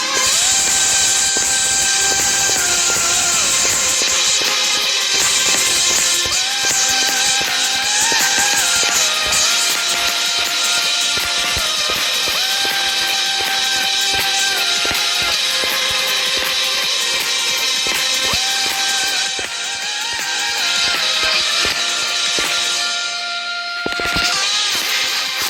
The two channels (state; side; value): identical; both; correlation 1.00